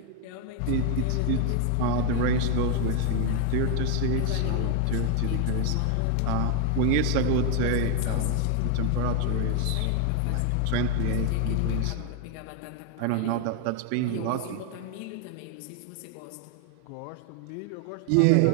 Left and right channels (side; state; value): both; different; correlation 0.00